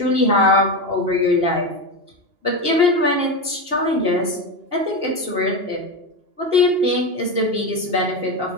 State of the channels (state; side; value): late; left; 2.8 ms